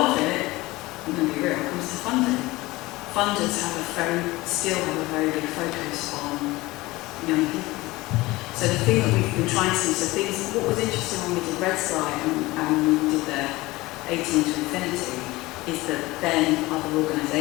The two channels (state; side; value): quieter; right; 20.1 dB